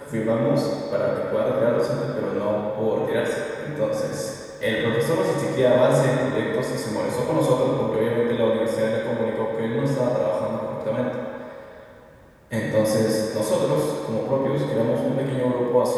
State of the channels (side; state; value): both; identical; correlation 1.00